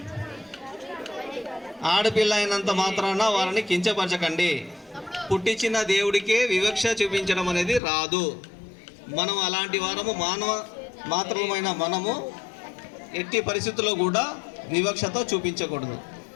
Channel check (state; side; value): drops out; right; at 7.8 s